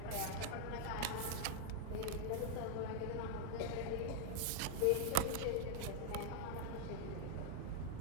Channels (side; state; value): both; different; correlation 0.00